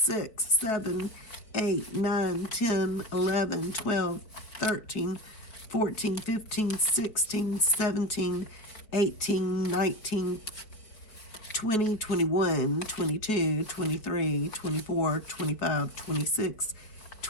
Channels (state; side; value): late; right; 4.7 ms